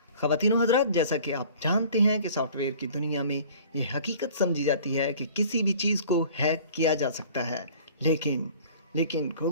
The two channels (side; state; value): both; inverted; correlation -0.48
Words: ख़वातीन व हज़रात, जैसा कि आप जानते हैं कि सॉफ्टवेयर की दुनिया में ये हकीकत समझी जाती है कि किसी भी चीज़ को हैक किया जा सकता है, लेकिन